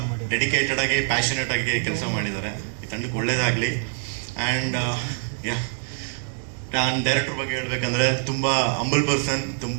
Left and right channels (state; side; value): silent; left; digital silence